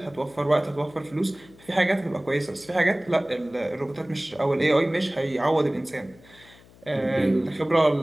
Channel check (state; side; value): noise; left; hum, 25 dB below the sound